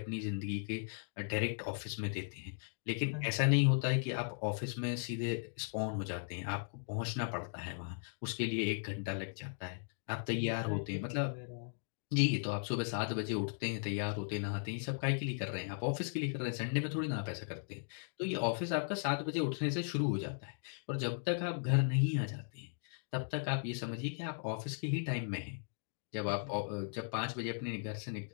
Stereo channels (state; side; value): silent; right; digital silence